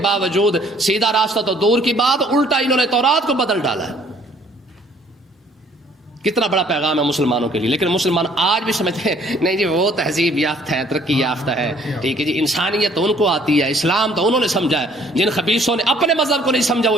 باوجود سیدھا راستہ تو دور کی بات, الٹا انہوں نے تورات کو بدل ڈالا ہے. کتنا بڑا پیغام ہے مسلمانوں کے لیے. لیکن مسلمان آج بھی سمجھتے ہیں نہیں جی وہ تہذیب یافتہ ہے, ترقی یافتہ ہے, ٹھیک ہے جی, انسانیت تو ان کو آتی ہے, اسلام تو انہوں نے سمجھا ہے. جن خبیثوں نے اپنے مذہب کو نہیں سمجھا وہ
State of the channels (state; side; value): normal; both; correlation 0.59